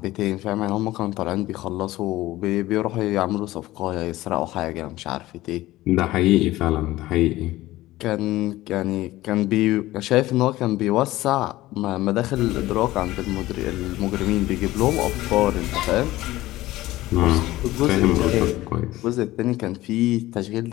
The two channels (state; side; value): quieter; right; 16.9 dB